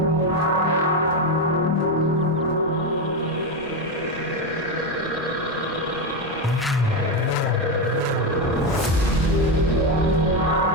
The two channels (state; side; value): normal; both; correlation 0.10